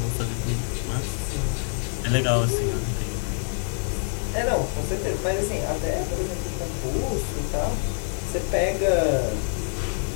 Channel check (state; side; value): silent; right; 61 dB below the other